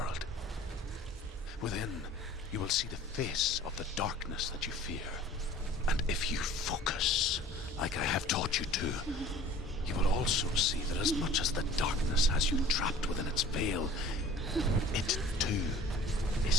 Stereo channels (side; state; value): both; normal; correlation 0.47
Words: Within, you will see the face of the darkness that you fear. And if you focus, like I have taught you to, you will also see that as much as the darkness has you trapped within its veil, it too